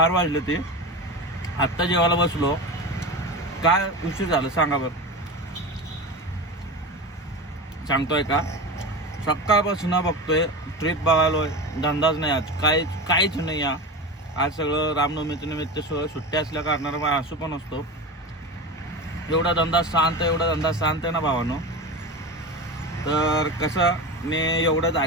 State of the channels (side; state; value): both; normal; correlation 0.25